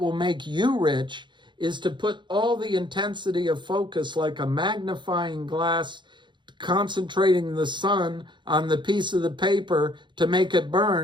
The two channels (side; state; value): left; late; 0.23 ms